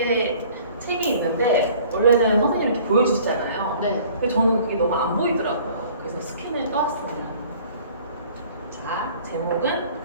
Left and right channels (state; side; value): inverted; both; correlation -0.52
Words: 책이 있는데 원래는 선생님이 이렇게 보여주시잖아요. 네. 근데 저는 그게 너무 안 보이더라고요. 그래서 스캔을 떠왔습니다. 자, 제목은